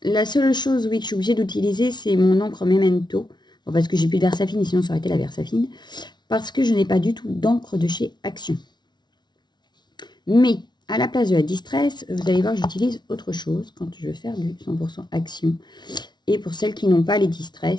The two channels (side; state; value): right; late; 0.20 ms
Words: seule chose, oui, que je suis obligée d'utiliser, c'est mon encre Memento. Bon, parce que j'ai plus de Versafine, sinon ça aurait été la Versafine. Parce que je n'ai pas du tout d'encre de chez Action. Mais, à la place de la Distress, vous allez voir, j'utilise autre chose quand je veux faire du 100% Action. Et pour celles qui n'ont pas les